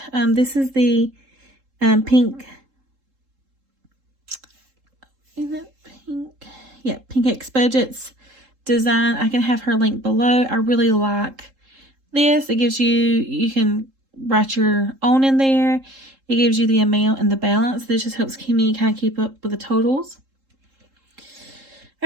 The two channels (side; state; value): left; late; 3.7 ms